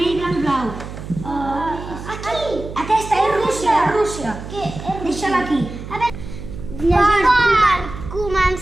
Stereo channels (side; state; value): right; noise; hum, 11 dB below the sound